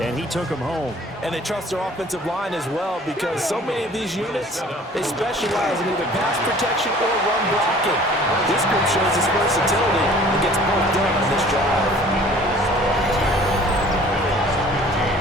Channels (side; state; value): both; normal; correlation 0.50